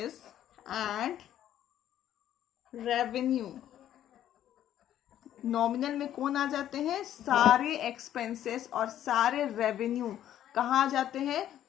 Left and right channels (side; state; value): right; quieter; 11.4 dB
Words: and revenue. Nominal में कौन आ जाते हैं? सारे एक्सपेंसेस और सारे रेवेन्यू कहाँ आ जाते हैं?